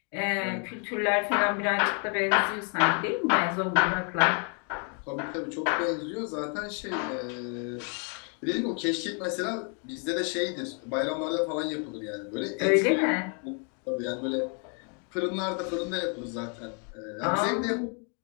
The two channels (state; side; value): quieter; right; 39.7 dB